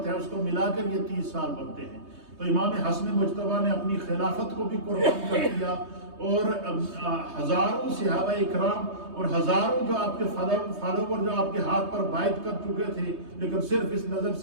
ہے اس کو ملا کر یہ 30 سال بنتے ہیں. تو امام حسن مجتبی نے اپنی خلافت کو بھی قربان کر دیا، اور ہزاروں صحابہ اکرام اور ہزاروں جو آپ کے فالوور جو آپ کے ہاتھ پر بیعت کر چکے تھے، لیکن صرف اس نظر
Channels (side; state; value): left; late; 3.2 ms